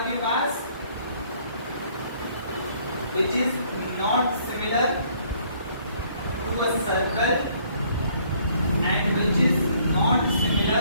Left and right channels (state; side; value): inverted; both; correlation -0.63